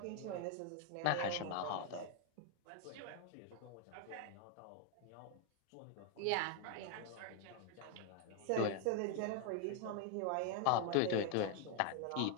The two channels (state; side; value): different; both; correlation 0.00